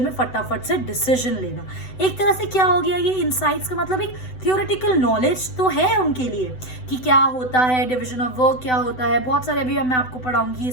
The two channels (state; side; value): late; right; 7.9 ms